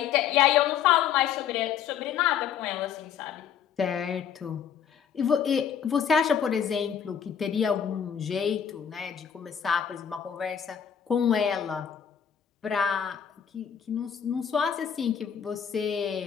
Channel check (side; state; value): right; quieter; 8.2 dB